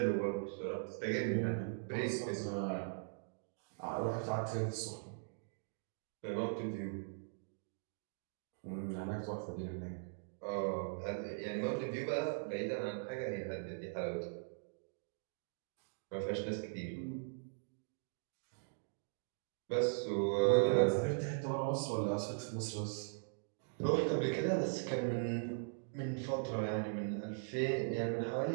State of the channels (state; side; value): silent; left; digital silence